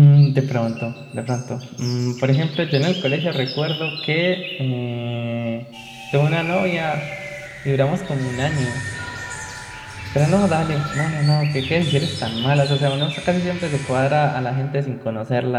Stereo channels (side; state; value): both; identical; correlation 1.00